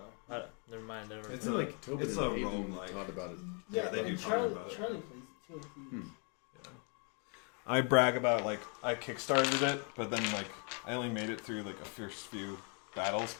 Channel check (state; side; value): quieter; right; 38.2 dB